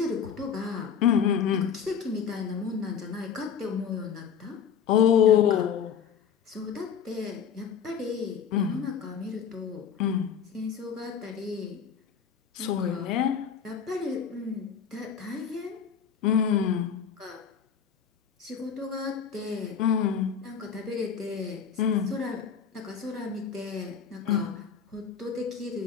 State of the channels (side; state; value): right; quieter; 7.4 dB